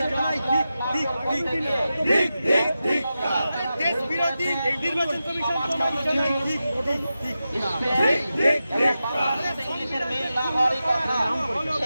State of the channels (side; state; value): both; inverted; correlation -0.92